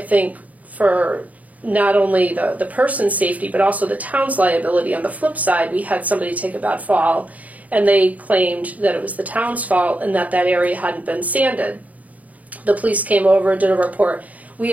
for not only the person's safety, but also the town's liability. On the flip side, we had somebody take a bad fall, and they claimed that it was the town's fault and that area hadn't been sanded. The police came over, did a report. We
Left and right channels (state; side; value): late; left; 0.072 ms